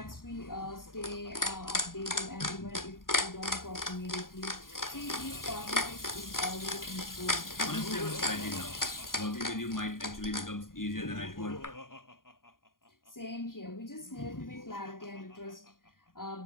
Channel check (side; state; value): right; late; 0.91 ms